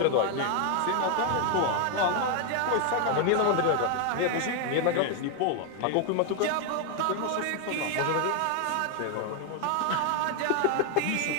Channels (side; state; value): both; different; correlation 0.00